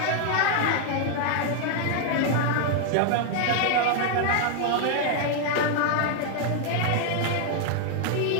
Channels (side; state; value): both; different; correlation 0.00